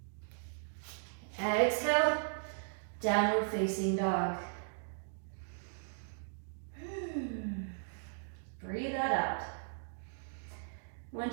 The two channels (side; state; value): left; silent; digital silence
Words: Exhale, downward facing dog. Breathe that out.